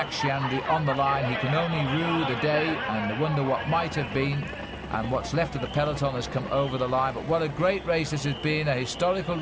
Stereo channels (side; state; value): both; identical; correlation 1.00